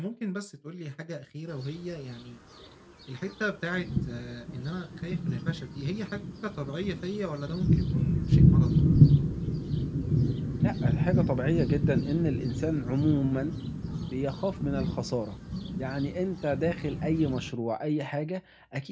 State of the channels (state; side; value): identical; both; correlation 1.00